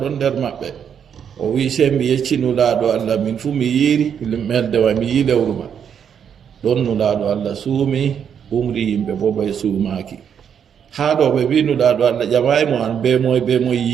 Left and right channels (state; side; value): quieter; left; 8.0 dB